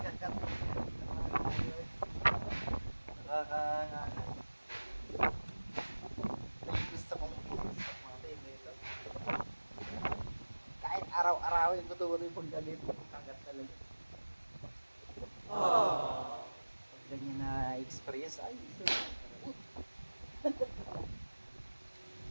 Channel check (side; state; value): both; inverted; correlation -1.00